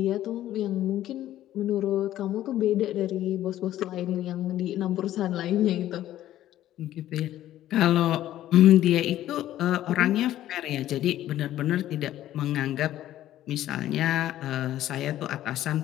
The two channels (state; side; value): quieter; right; 13.2 dB